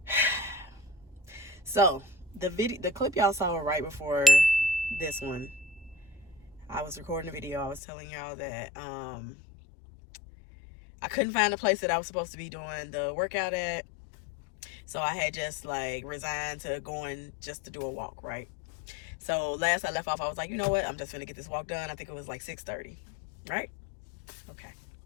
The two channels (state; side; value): drops out; right; at 7.8 s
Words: so the clip y'all saw right before this one, I was recording a video. I was telling y'all that I couldn't find a place that I was supposed to be doing the workout at. So I had just like resigned to going just to do a walk, right? So last I left off, I was like, you know what? I'm just gonna get this walk done. I think it was like 6:30, right? Okay.